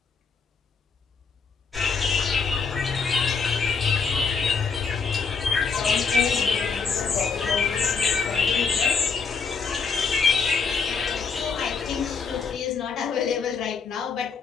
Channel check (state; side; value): quieter; right; 5.3 dB